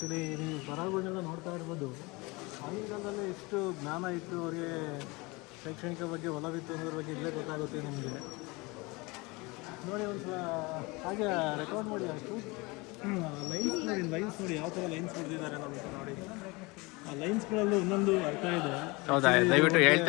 ನೀವು ಬರಹಗಳನ್ನೆಲ್ಲ ನೋಡ್ತಾ ಇರ್ಬೋದು. ಆಗಿನ ಕಾಲದಲ್ಲಿ ಎಷ್ಟು ಜ್ಞಾನ ಇತ್ತು ಅವರಿಗೆ, ಶೈಕ್ಷಣಿಕ ಬಗ್ಗೆ ಒಲವಿತ್ತು ಅನ್ನೋದ್ರ ಬಗ್ಗೆ ಇಲ್ಲೇ ಗೊತ್ತಾಗುತ್ತೆ ನಿಮಗೆ. ನೋಡಿ ಒಂದು ಸಲ ಹಾಗೆ ರೆಕಾರ್ಡ್ ಮಾಡಿ, ಅಷ್ಟು ಲೈನ್ಸ್ ನೋಡಿ ಯಾವ ಥರ ಲೈನ್ಸ್ ಹೊಡೆದಿದ್ದಾರೆ ನಮಗೆ. ನೋಡಿ ಆ ಲೈನ್ಸ್ಗಳಲ್ಲೂ ಒಂದೊಂದು ಅರ್ಥ ಇದೆ. ಹೌದಾ? ದಯವಿಟ್ಟು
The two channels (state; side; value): quieter; right; 25.3 dB